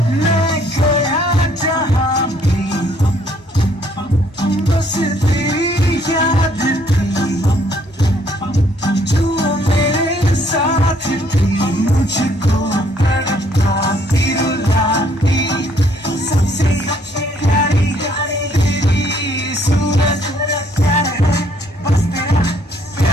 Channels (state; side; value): normal; both; correlation 0.65